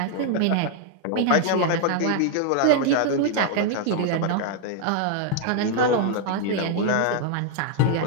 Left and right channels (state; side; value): different; both; correlation 0.00